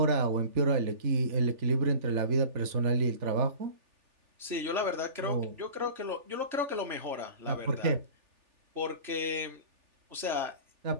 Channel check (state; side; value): late; left; 3.4 ms